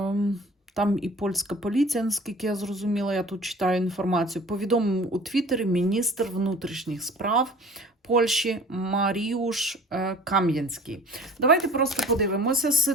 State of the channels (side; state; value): both; normal; correlation 0.45